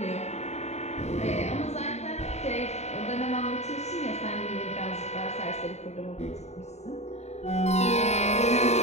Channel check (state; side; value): late; right; 0.32 ms